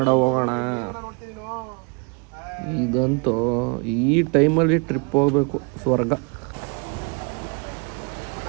ಹೋಗೋಣ. ಇದಂತೂ ಈ ಟೈಮಲ್ಲಿ ಟ್ರಿಪ್ ಹೋಗ್ಬೇಕು. ಸ್ವರ್ಗ.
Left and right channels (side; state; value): left; quieter; 34.7 dB